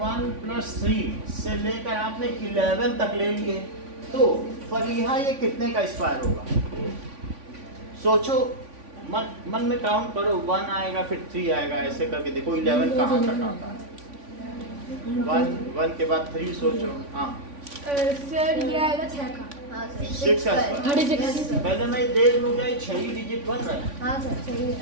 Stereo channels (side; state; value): left; late; 3.5 ms